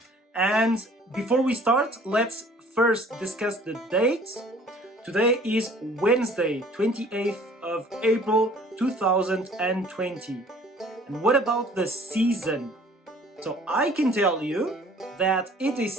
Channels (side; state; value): both; normal; correlation 0.53